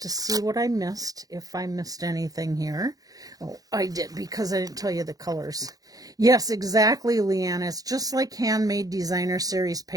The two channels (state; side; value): late; left; 0.18 ms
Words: to see what I missed, if I missed anything here. Oh, I did, because I didn't tell you the colors. Yes, exactly, Leanna. It's just like Handmade Designer Series